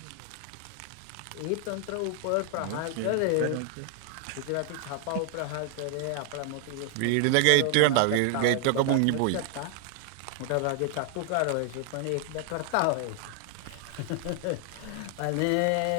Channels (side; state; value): both; different; correlation 0.00